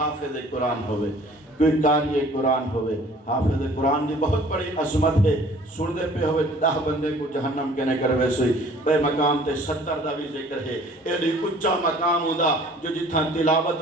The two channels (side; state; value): both; normal; correlation 0.52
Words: قرآن ہوئے، کوئی قاری قرآن ہوئے۔ حافظ قرآن دی بہت بڑی عظمت ہے، سن دے پہ ہوئے 10 بندے کو جہنم کہنے کر ویسے بے مقام تے 70 دا بھی ذکر ہے۔ ایڈی اچھا مقام ہودا جو جتھا